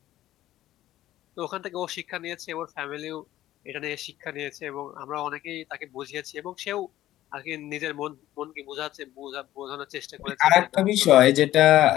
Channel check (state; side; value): quieter; right; 14.1 dB